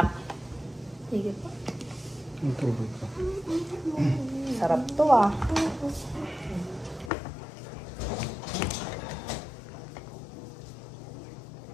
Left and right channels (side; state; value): right; drops out; at 7.1 s